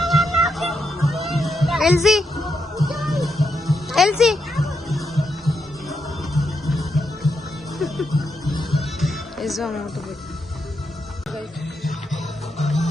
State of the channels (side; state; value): both; normal; correlation 0.82